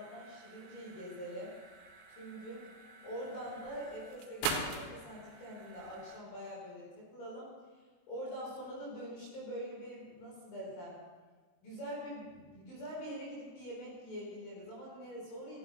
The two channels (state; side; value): late; right; 23 ms